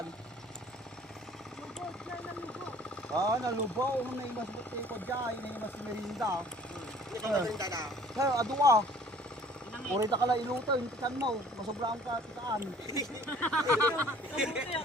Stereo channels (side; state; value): both; normal; correlation 0.53